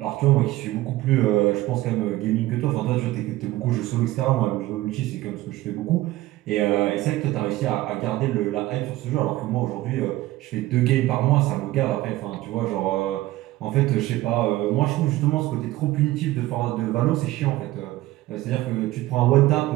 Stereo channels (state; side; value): quieter; left; 16.9 dB